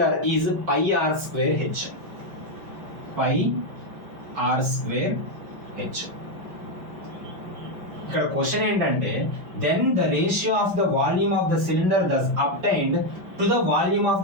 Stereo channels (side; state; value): left; late; 5.5 ms